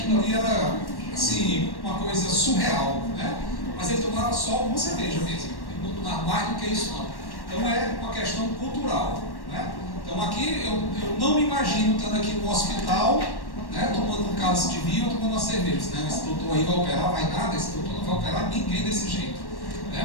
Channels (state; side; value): late; right; 1.1 ms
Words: ali era assim, uma coisa surreal, né? Mas ele tomava só uma cerveja mesmo. Ele não tomava mais do que isso não. Então é uma questão cultural, né? Então aqui eu não me imagino estando aqui no hospital, né, tomando um cálice de vinho ou tomando uma cerveja. Né? Esse doutor aí vai operar, vai nada, esse doutor não vai operar ninguém desse jeito.